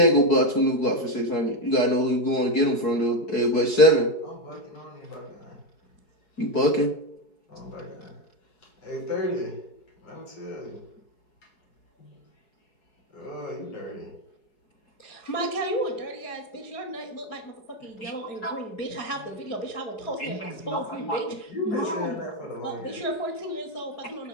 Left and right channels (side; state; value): right; late; 4.7 ms